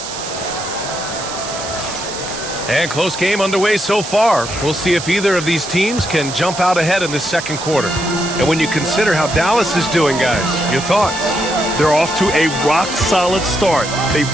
And close game underway so far. We'll see if either of these teams can jump out ahead in this 2nd quarter. And when you consider how Dallas is doing, guys, your thoughts? They're off to a rock-solid start. They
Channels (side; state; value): right; noise; hiss, 9 dB below the sound